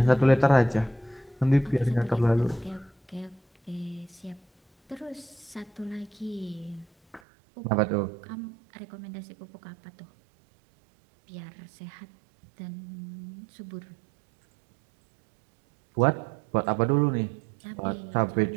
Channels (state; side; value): drops out; left; at 7.2 s